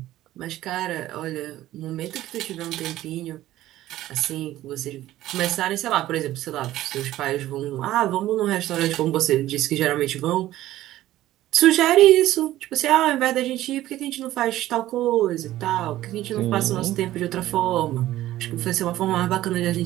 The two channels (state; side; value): quieter; left; 14.6 dB